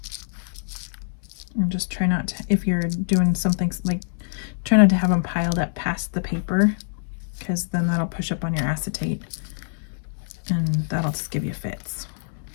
And just try not to, if you're doing something like, try not to have them piled up past the paper, because then that'll push up on your acetate and that'll just give you fits.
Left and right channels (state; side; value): silent; right; 62 dB below the other